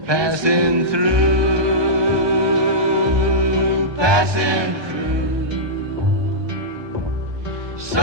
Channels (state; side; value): late; left; 1.2 ms